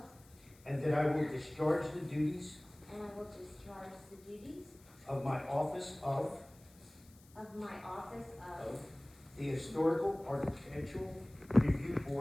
and that I will discharge the duties and I will discharge the duties of my office of the Historical Architectural Review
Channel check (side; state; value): left; noise; hiss, 26 dB below the sound